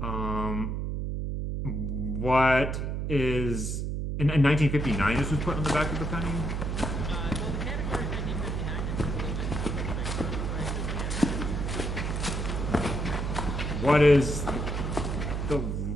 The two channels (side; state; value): right; noise; hum, 2 dB below the sound